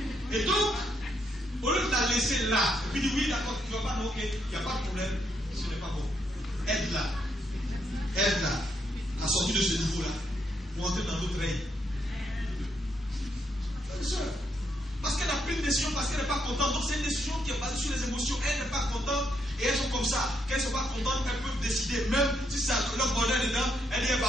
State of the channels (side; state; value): both; normal; correlation 0.77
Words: Et donc, au lieu de la laisser là, et puis dire oui, d'accord, tu ne vas pas, non, ok, il n'y a pas de problème, ce n'est pas bon. Aide-la à sortir de ce niveau-là, pour entrer dans notre règne. Parce qu'elle a pris une décision, parce qu'elle n'est pas contente. Donc c'est une décision qui est basée sur les émotions. Elle n'est pas contente et elles sont comme ça. Qu'elles ne sont pas contentes, elles peuvent décider. Même si ça leur bonheur dedans, elle dit